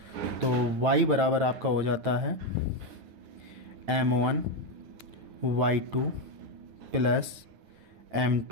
तो y बराबर आपका हो जाता है m1 y2 plus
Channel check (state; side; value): late; left; 9.1 ms